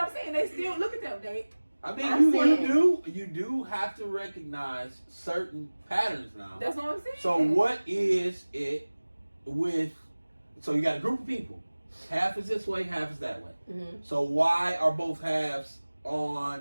saying they still look at them. They I mean, I'm saying- you do have to recognize certain patterns now. that's what I'm saying. So what is it with? So you got a group of people. Half is this way, half is that way. Mm-hmm. So why are both halves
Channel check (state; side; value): inverted; both; correlation -1.00